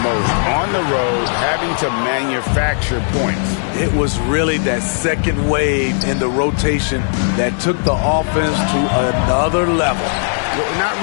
most. On the road, having to manufacture points. It was really that second wave in the rotation that took the offense to another level. Well, not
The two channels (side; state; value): right; silent; 68 dB below the other